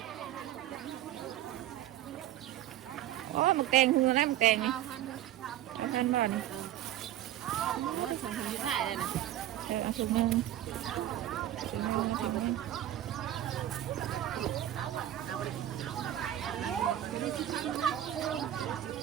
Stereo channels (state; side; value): quieter; left; 12.5 dB